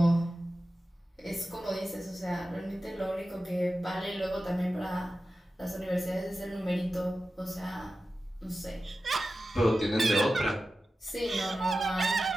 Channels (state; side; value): normal; both; correlation 0.94